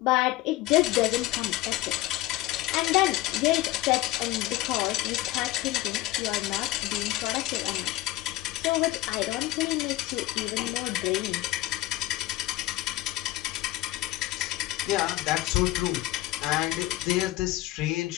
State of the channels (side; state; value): right; quieter; 16.5 dB